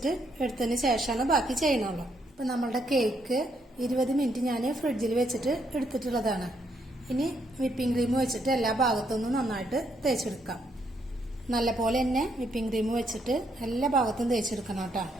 എടുത്തതിന് ശേഷമാണ് ബാക്കി ചെയ്യണുള്ളൂ. അപ്പൊ നമ്മളുടെ കേക്ക് 20 മിനിറ്റ് ഞാൻ ഫ്രിഡ്ജിൽ വെച്ചിട്ട് എടുത്തിട്ടുള്ളതാണ്. ഇനി വിപ്പിംഗ് ക്രീം വെച്ചിട്ട് എല്ലാ ഭാഗത്തുനിന്നും നന്നായിട്ട് തേച്ചെടുക്കാം. നല്ലപോലെ തന്നെ വിപ്പിംഗ് ക്രീം വെച്ചിട്ട് എല്ലാ ഭാഗത്തും തേച്ചെടുക്കണം കേട്ടോ.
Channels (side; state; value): both; normal; correlation 0.74